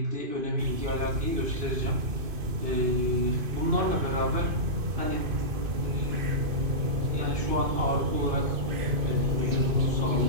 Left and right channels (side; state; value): left; late; 2.5 ms